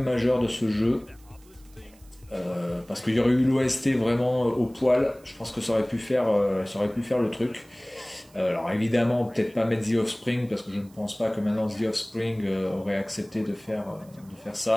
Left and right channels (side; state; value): right; noise; hiss, 28 dB below the sound